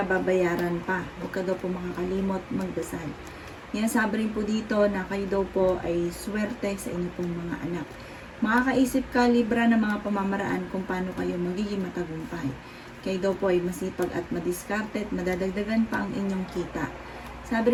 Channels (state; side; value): identical; both; correlation 1.00